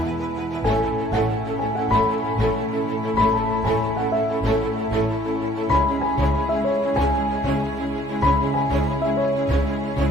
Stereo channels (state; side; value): normal; both; correlation 0.60